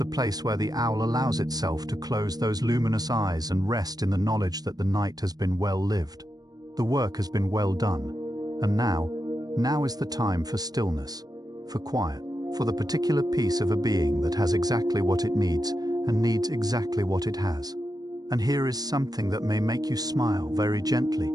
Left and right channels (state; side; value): late; left; 0.19 ms